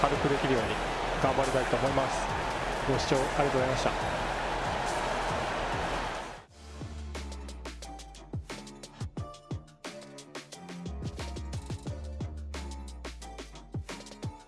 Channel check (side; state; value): both; identical; correlation 1.00